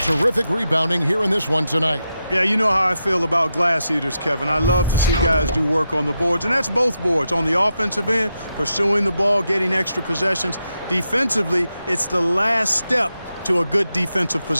terrific rebounding here in this one tonight. Yeah, you know how I feel about glass eaters, Kevin. I love to see guys do work on the boards, and that's both boards. On the offensive end, pursuing the ball, getting extra possessions. Defensively, it's the last step to a good defensive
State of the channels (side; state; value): both; inverted; correlation -0.87